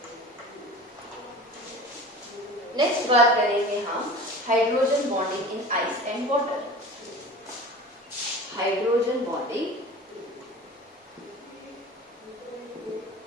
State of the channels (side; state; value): both; normal; correlation 0.38